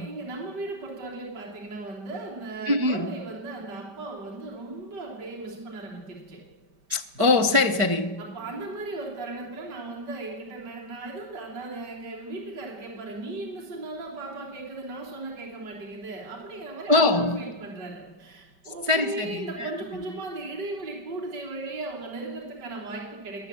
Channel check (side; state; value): left; late; 5.1 ms